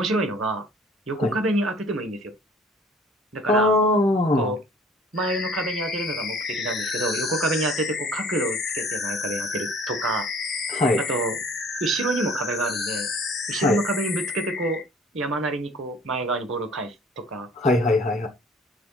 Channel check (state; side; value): normal; both; correlation 0.52